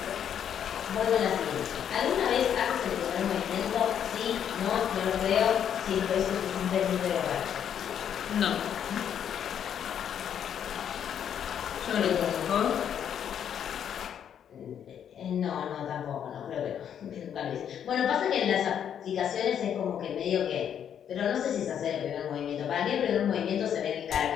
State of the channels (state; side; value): quieter; right; 8.9 dB